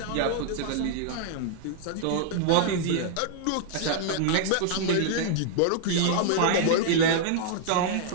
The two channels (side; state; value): both; different; correlation -0.01